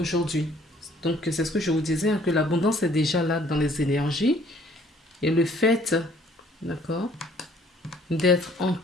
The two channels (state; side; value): normal; both; correlation 0.59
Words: Donc, c'est ce que je vous disais, hein, que l'abondance est déjà là dans les énergies. Et le fait, d'accord, d'être